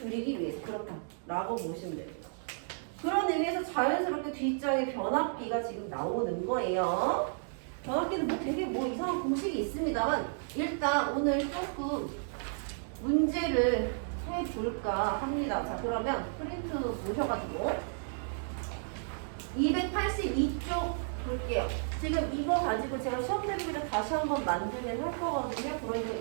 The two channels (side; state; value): left; silent; digital silence